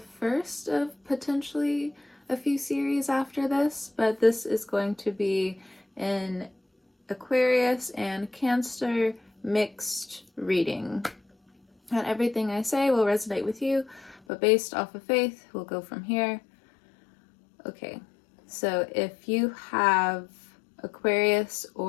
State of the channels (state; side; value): drops out; right; at 14.2 s